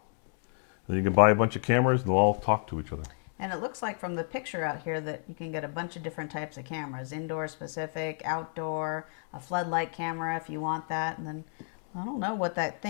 then you can buy a bunch of cameras, and they'll all talk to each other. And it looks like from the picture out here that you can get a bunch of different types of cameras, indoor specific, outdoor, a floodlight camera if you want that. And then, I don't know what that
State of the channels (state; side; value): silent; right; 56 dB below the other